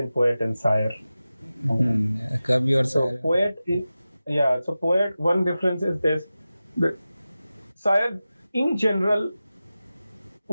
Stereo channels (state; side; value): inverted; both; correlation -0.95